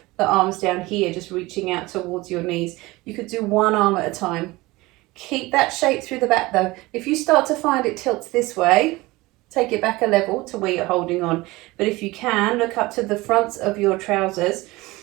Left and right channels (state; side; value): quieter; left; 20.9 dB